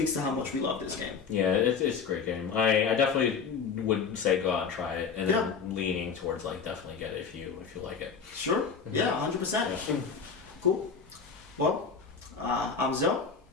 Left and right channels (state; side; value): quieter; right; 5.8 dB